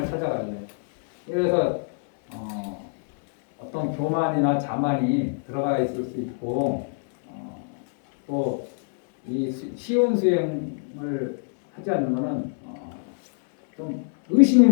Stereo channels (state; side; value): silent; right; digital silence